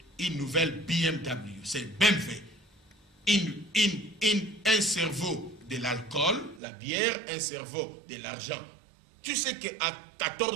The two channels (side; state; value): left; drops out; at 6.6 s